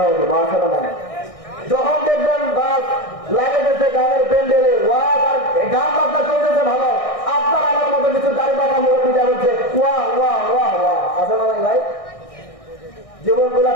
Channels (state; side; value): late; right; 1.6 ms